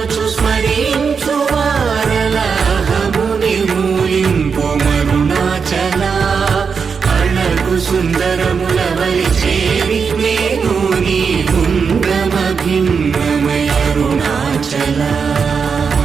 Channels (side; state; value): left; quieter; 5.8 dB